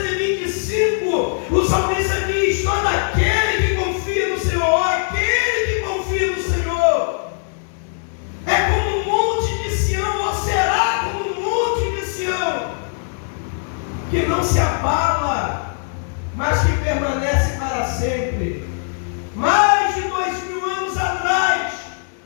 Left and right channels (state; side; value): silent; right; digital silence